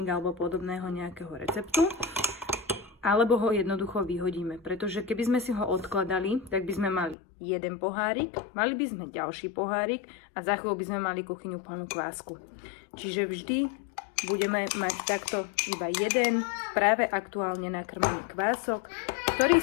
alebo podobného nejakého receptu, alebo ho jednoducho vyhodíme, pretože keby sme si ho odkladali, tak by sme mali jeden pohárik, mali by sme ďalší pohárik a za chvíľu by sme mali kuchyňu plnú kvásku. Čiže vždy budeme mať takto iba jeden práve aktuálne nakrmený kvások, ktorý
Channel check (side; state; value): right; drops out; at 7.2 s